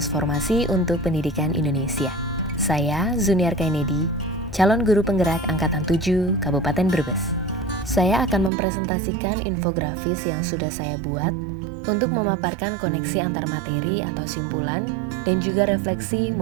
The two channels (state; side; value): drops out; left; at 8.5 s